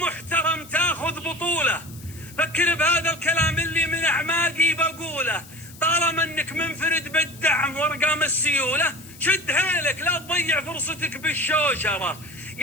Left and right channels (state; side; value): noise; left; hiss, 20 dB below the sound